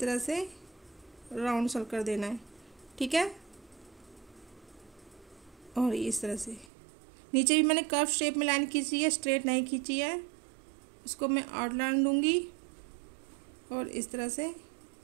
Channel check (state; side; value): drops out; left; at 6.7 s